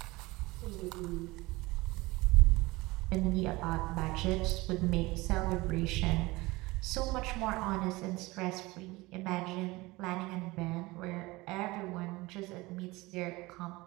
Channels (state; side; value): quieter; left; 21.6 dB